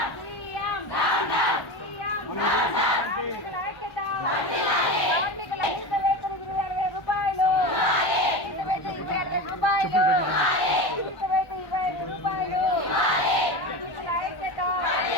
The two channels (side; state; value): right; late; 1.1 ms